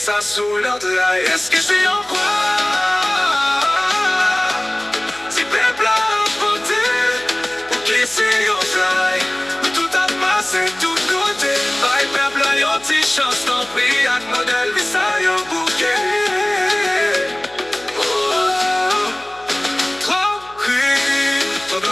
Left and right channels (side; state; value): left; noise; hum, 26 dB below the sound